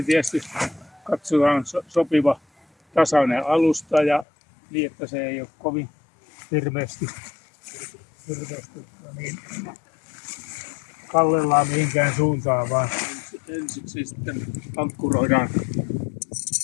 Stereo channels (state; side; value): drops out; right; at 4.2 s